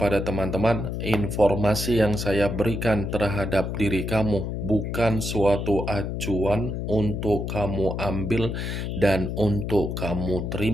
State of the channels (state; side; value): noise; left; hum, 3 dB below the sound